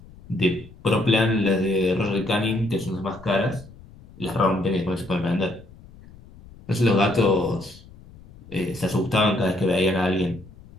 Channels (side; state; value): left; noise; rumble, 21 dB below the sound